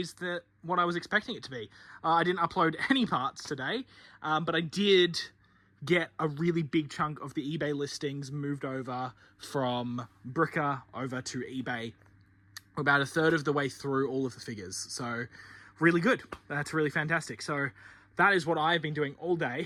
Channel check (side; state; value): both; identical; correlation 1.00